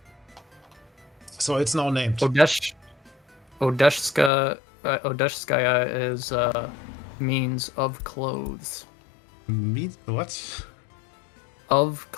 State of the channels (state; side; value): drops out; right; at 4.3 s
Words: So it's now named. Odeshskaya is means of clothes. What? Of